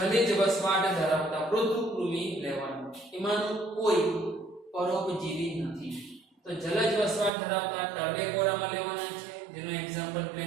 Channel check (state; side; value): drops out; left; at 7.3 s